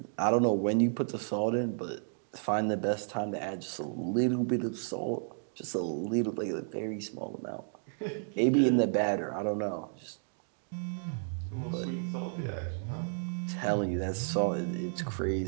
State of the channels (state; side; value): silent; left; digital silence